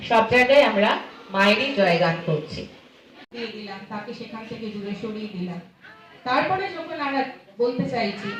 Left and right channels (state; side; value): identical; both; correlation 1.00